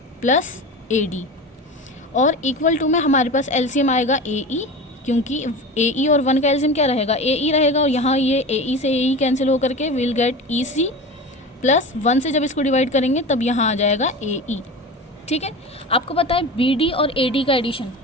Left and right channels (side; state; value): both; normal; correlation 0.30